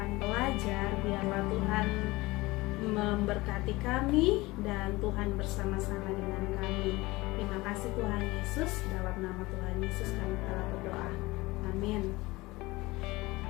belajar, biarlah Tuhan memberkati kami dan Tuhan bersama-sama dengan kami. Terima kasih Tuhan Yesus, dalam nama Tuhan Yesus kami telah berdoa. Amin.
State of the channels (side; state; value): right; quieter; 21.0 dB